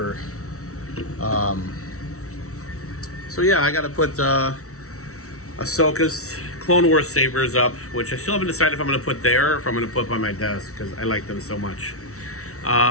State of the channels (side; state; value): right; late; 0.64 ms